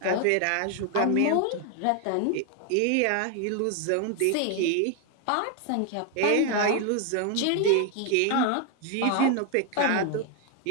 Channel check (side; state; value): both; different; correlation 0.01